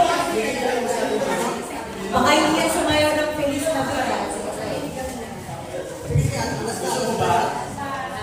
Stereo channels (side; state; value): both; identical; correlation 1.00